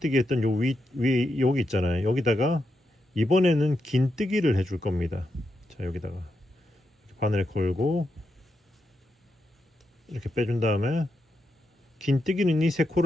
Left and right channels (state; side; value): normal; both; correlation 0.85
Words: 했던 요 위 여기 있잖아요. 여기다가 이번에는 긴뜨기를 해줄 겁니다. 자, 여기다가 바늘 걸고 이렇게 빼준 다음에 긴뜨기는 이 세